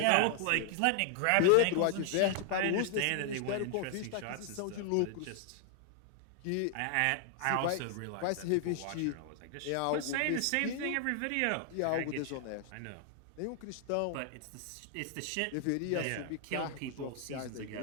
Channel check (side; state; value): both; different; correlation 0.00